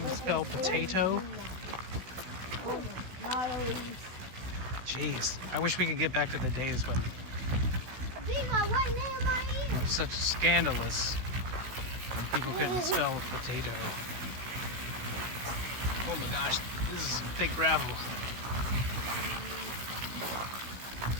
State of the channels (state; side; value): late; left; 16 ms